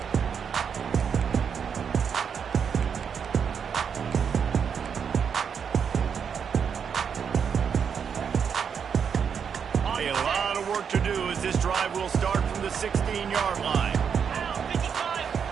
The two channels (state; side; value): quieter; left; 7.0 dB